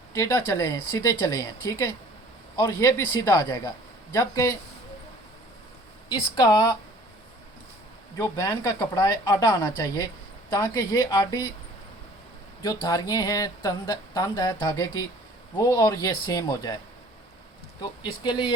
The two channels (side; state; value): both; normal; correlation 0.51